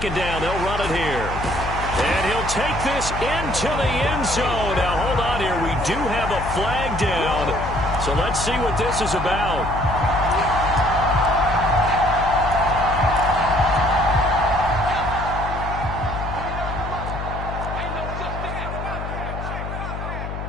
down, they'll run it here. And he'll take this into the end zone. Now, hold on here. We do have a flag down. So let's see what this is about.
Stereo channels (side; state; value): left; noise; hum, 6 dB below the sound